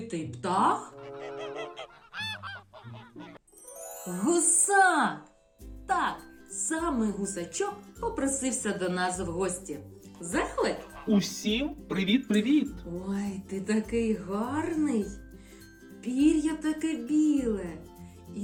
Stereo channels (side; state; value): both; identical; correlation 1.00